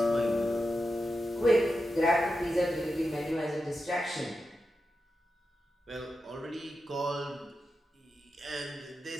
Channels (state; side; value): normal; both; correlation 0.89